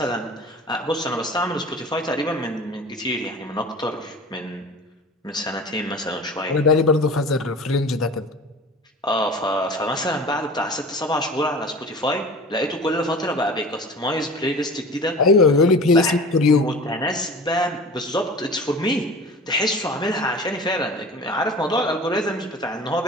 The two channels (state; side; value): normal; both; correlation 0.39